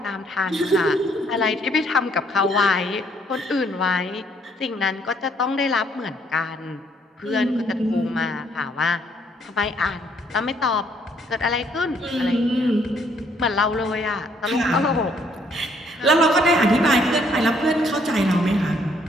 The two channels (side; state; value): both; normal; correlation 0.67